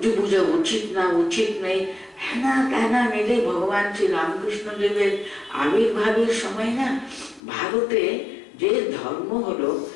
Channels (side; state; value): right; drops out; at 7.4 s